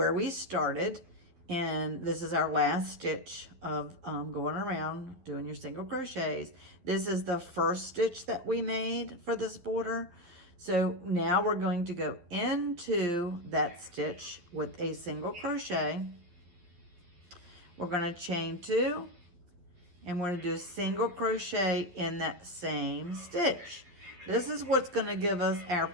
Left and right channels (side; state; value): left; late; 11 ms